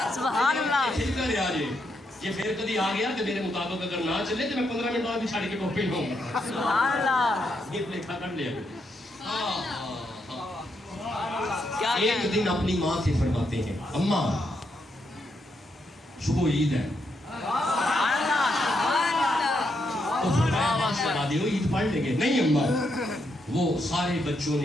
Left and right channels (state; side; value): normal; both; correlation 0.80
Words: سبحان اللہ. ٹھیک کر یار یہ پھر کبھی آ گیا تو میرے مطابق اگر نہ چلے تو میں 15 منٹ بعد بھی چھاڑ کے ٹوپی لوں گا. سبحان اللہ. یہ لکھا کر لیا. کیا ایک دن اپنی ماں سے فرماتے ہیں, اماں صبح عید ہے. تو فرمایا سنا دیو عید پڑھ لیں گے. نہیں اماں, وہ سارے بچوں